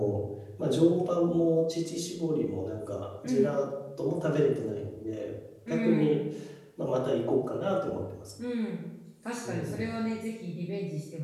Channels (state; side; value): identical; both; correlation 1.00